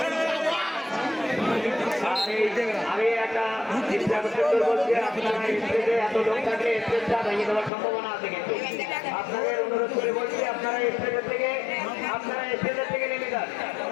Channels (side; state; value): right; drops out; at 7.7 s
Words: আমি একটা বলছি, আপনারা স্টেজে এত লোক থাকলে স্টেজটা ভেঙে দেওয়ার সম্ভাবনা আছে, কিন্তু আপনাদের অনুরোধ করে বলছি আপনারা স্টেজের থেকে নেমে যান।